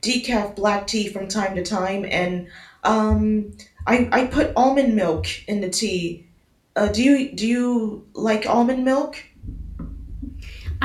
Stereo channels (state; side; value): identical; both; correlation 1.00